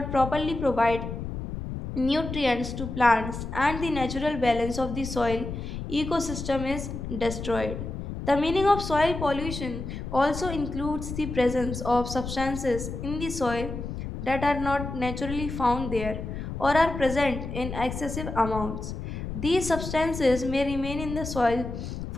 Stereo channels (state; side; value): noise; left; rumble, 6 dB below the sound